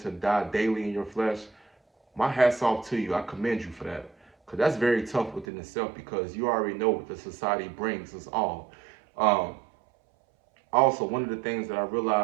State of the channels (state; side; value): drops out; left; at 5.5 s